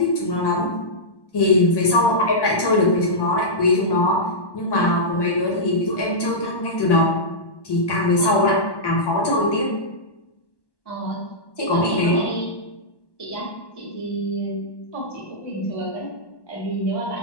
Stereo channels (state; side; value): late; right; 1.1 ms